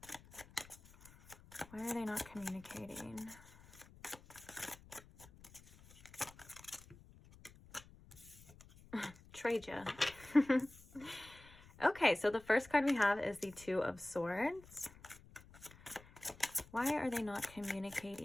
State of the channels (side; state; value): left; noise; rumble, 21 dB below the sound